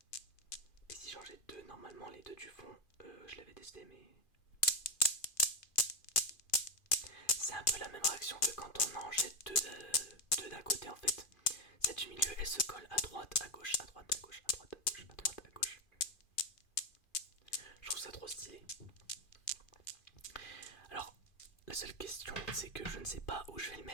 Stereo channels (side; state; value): right; late; 2.4 ms